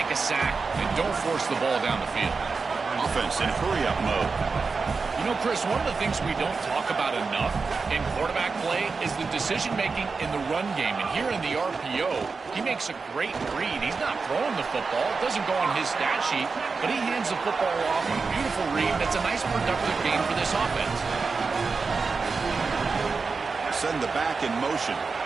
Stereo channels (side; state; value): left; quieter; 4.6 dB